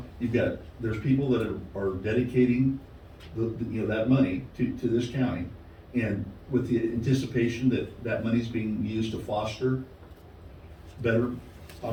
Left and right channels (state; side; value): identical; both; correlation 1.00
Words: there's people that are dedicating that money to this county. And with the anticipation that money's being used to foster better